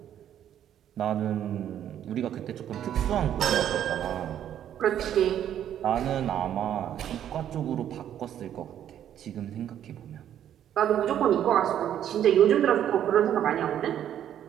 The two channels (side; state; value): left; quieter; 10.4 dB